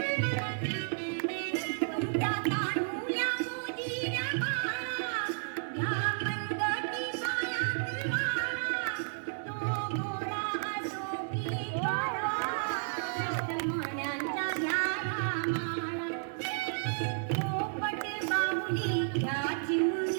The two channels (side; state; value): left; silent; digital silence